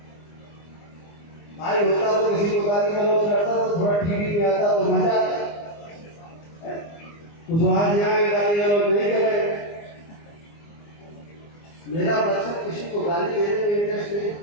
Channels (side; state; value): right; late; 24 ms